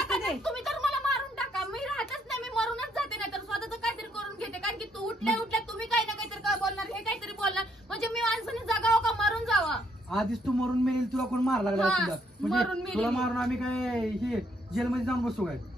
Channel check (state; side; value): normal; both; correlation 0.71